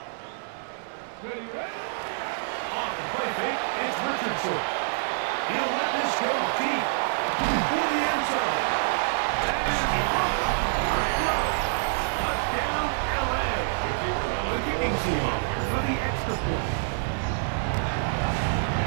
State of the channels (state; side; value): silent; left; digital silence